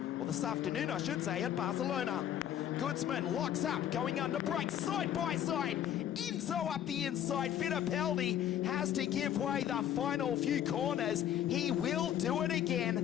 or this afternoon I should say, at Barcelona. Goodsman locks up, going under brakes, side by side. Enzo up the inside. Fittipaldi has to give way the final few corners. He will do it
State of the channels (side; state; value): right; quieter; 10.7 dB